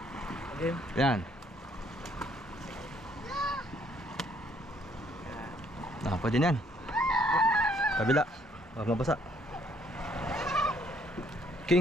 Again. Yan. Pwede na yan. Kabila. Huwag mabasa.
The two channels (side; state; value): both; normal; correlation 0.66